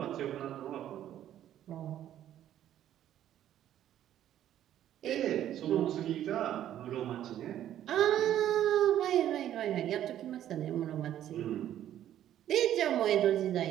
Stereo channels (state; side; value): quieter; left; 11.5 dB